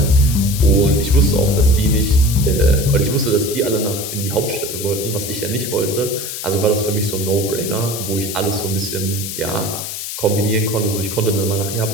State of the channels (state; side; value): noise; left; hiss, 6 dB below the sound